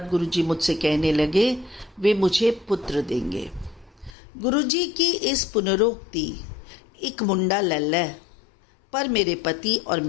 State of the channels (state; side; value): drops out; right; at 4.1 s